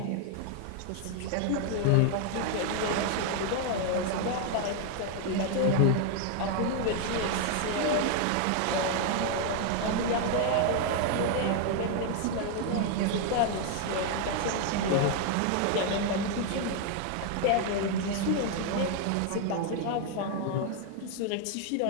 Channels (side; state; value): both; different; correlation 0.00